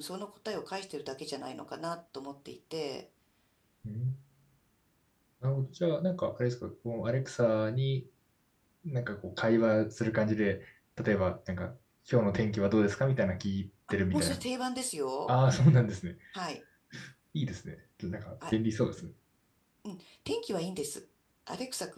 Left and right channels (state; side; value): identical; both; correlation 1.00